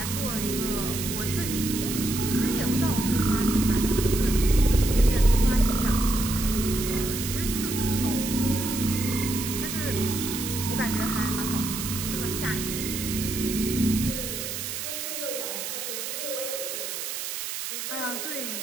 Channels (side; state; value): right; noise; hiss, 5 dB below the sound